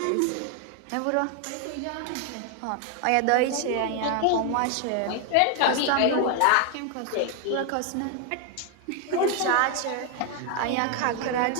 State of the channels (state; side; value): different; both; correlation 0.01